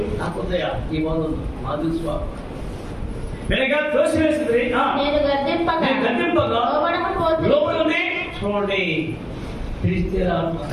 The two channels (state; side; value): identical; both; correlation 1.00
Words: ఈ బోధ మా తెలుసు వెనక త్రోసివేసింది. నేను గద్దింపగా లోపలి చూడండి, పిలిస్తే